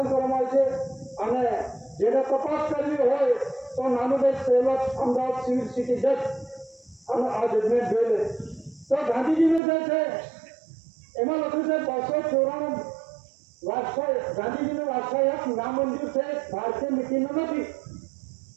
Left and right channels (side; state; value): left; drops out; at 9.6 s